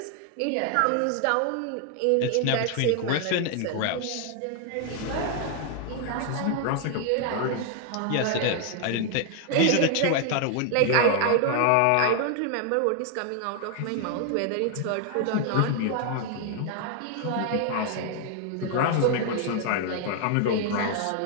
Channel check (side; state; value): both; different; correlation 0.00